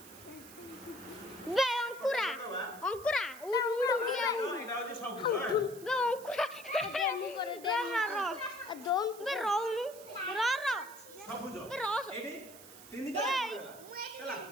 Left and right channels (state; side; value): noise; right; hiss, 18 dB below the sound